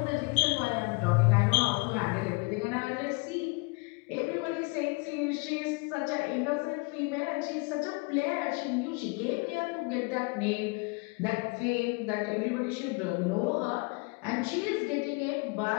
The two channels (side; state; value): right; quieter; 29.4 dB